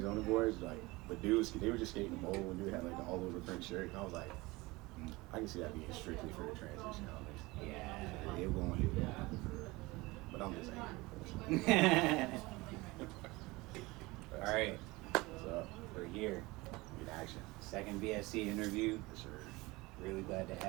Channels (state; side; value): quieter; left; 22.2 dB